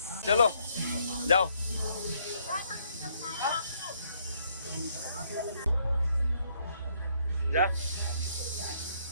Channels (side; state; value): both; inverted; correlation -0.70